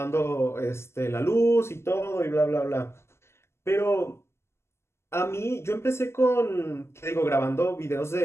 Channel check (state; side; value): late; right; 0.13 ms